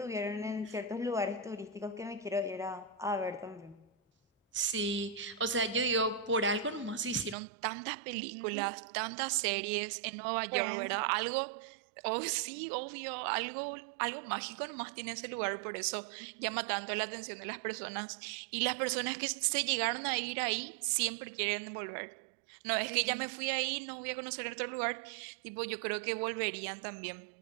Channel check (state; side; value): drops out; left; at 7.4 s